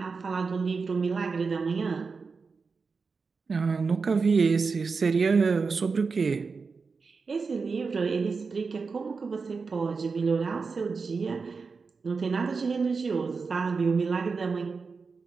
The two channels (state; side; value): quieter; left; 4.8 dB